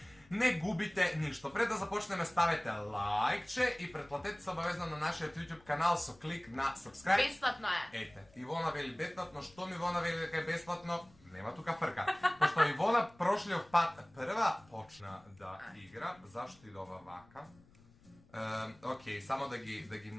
не губите ништо. Пред да започнеме, ставете лајкче и претплатете се обавезно на нашиот YouTube канал со клик на subscribe. Бесплатно е. Ете, Ивона вели бесплатно, што ми Ивона вели дека е бесплатно? Нема тука фрка. Пошто Ивона прошлиот пат прва почна да игра, зашто и да ова вака? Окей, само да ги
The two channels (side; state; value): left; noise; rumble, 27 dB below the sound